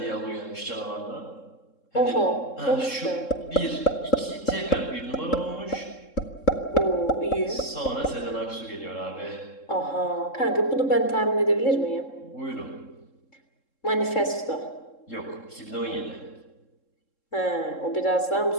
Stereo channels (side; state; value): right; late; 3.7 ms